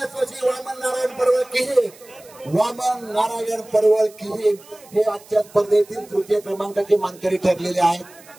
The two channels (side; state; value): right; noise; hiss, 23 dB below the sound